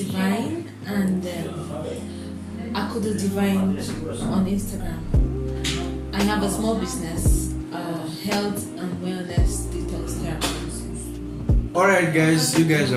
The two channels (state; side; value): identical; both; correlation 1.00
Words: and I could do Divine on Instagram. I have a small business, health and wellness detox therapy. Alright guys, you guys